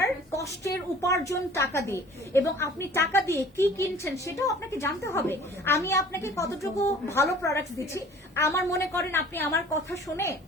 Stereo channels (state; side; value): normal; both; correlation 0.48